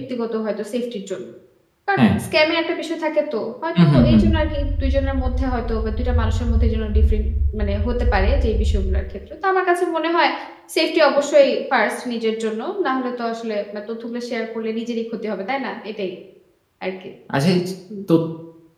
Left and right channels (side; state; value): both; identical; correlation 1.00